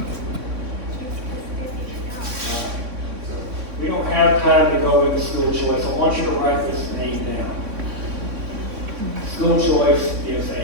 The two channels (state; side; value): late; left; 3.6 ms